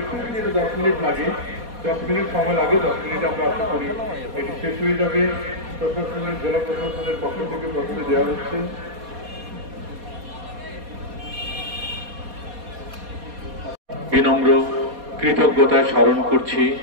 10 মিনিট লাগে, 10 মিনিট সময় লাগে, 10 মিনিট আমরা আশা করি এটি শেষ হয়ে যাবে। প্রশাসনের জেলা প্রশাসনের পক্ষ থেকে প্রথমে দেওয়া হচ্ছে বিনম্র কৃতজ্ঞতায় স্মরণ করছি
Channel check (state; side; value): late; left; 4.2 ms